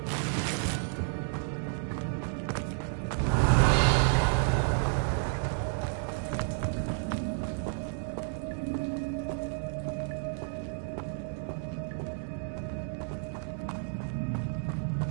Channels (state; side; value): silent; left; 57 dB below the other